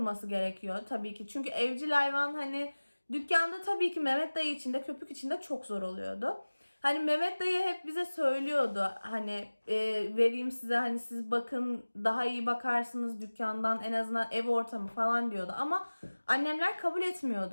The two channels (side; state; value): both; inverted; correlation -1.00